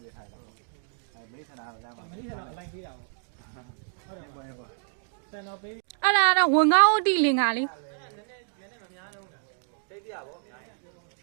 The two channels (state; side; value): silent; left; digital silence